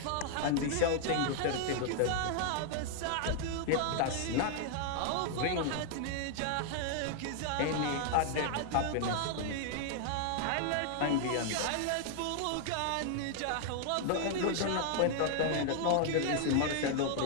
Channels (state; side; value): different; both; correlation 0.00